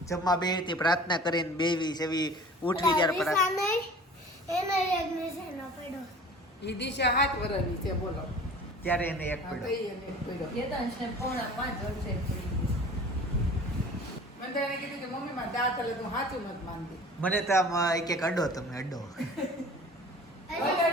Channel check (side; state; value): both; normal; correlation 0.43